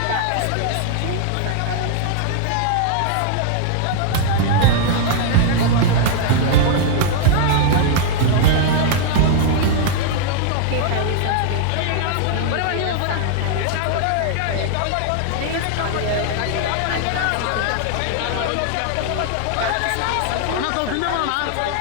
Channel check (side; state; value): both; different; correlation -0.01